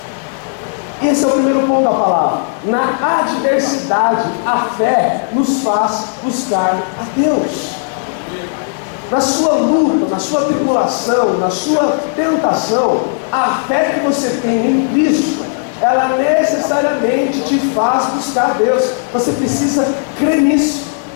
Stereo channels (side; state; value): right; silent; digital silence